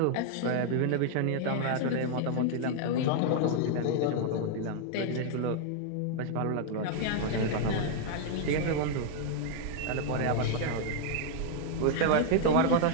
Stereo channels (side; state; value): both; different; correlation 0.00